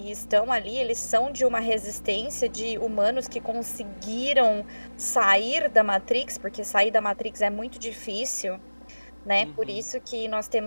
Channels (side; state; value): both; inverted; correlation -1.00